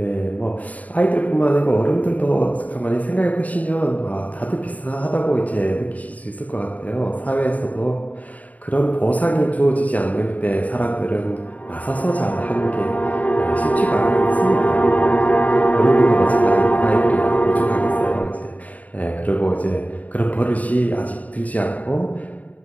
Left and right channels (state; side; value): late; right; 0.072 ms